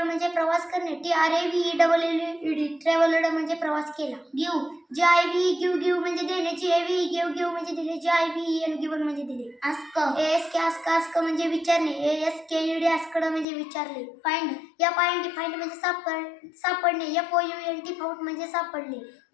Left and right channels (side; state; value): right; drops out; at 13.5 s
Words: म्हणजे प्रवास करणे, T R A V E double L E D travelled म्हणजे प्रवास केला. Give, G I V give give म्हणजे देणे, G A V give give म्हणजे दिले, G I V N given म्हणजे दिले. Ask, A S K ask ask म्हणजे विचारणे, A S K E D asked म्हणजे विचारले. Find, F I N D find म्हणजे सापडणे, F O U N T found म्हणजे सापडले.